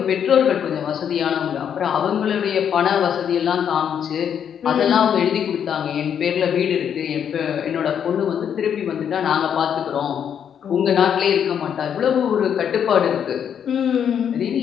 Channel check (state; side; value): quieter; right; 8.4 dB